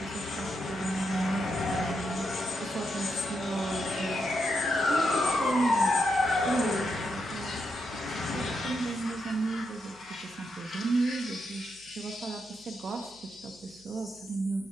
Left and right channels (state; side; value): noise; right; hum, 28 dB below the sound